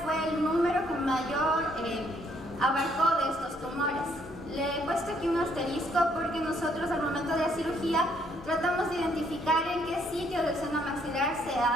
fue el número que mayor abarcó de estos tumores. Le he puesto aquí un asterisco porque nosotros al momento de la cirugía tratamos de identificar en qué sitio del seno maxilar se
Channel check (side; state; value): both; normal; correlation 0.68